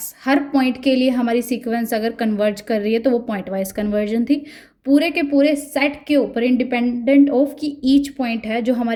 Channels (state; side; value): identical; both; correlation 1.00